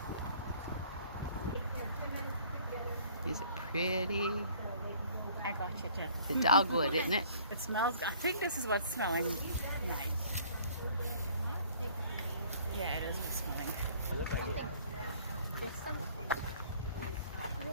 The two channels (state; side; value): inverted; both; correlation -0.55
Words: Is it pretty? I got you, Jen. The dogwood, isn't it? It smells, I think this is what's smelling nice. Yeah, it is what's smelling.